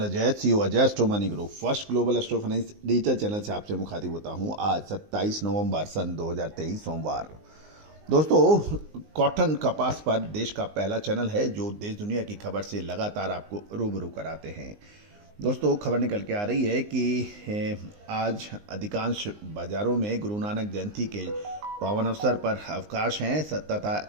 Ajay, CEO Ajay astro money group first global astro finance digital channel से आपसे मुखातिब होता हूं। आज 27 नवंबर सन 2023 सोमवार। दोस्तों, कॉटन कपास पर देश का पहला चैनल है जो देश दुनिया की खबर से लगातार आपको रूबरू कराते हैं। दोस्तों, खबर निकल के आ रही है कि आज अधिकांश बाजारों में गुरु नानक जयंती के पावन अवसर पर अवकाश हैं तथा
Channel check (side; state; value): left; late; 19 ms